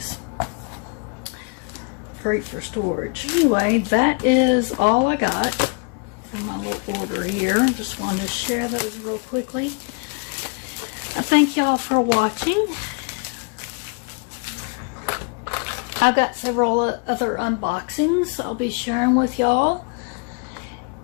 Great for storage. Anyway, that is all I got from my little order here. Just wanted to share those real quickly. I thank y'all for watching. I've got several other unboxings I'll be sharing with y'all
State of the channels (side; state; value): right; quieter; 33.6 dB